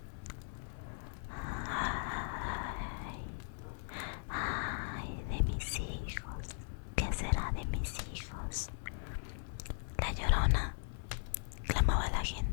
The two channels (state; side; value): silent; right; 52 dB below the other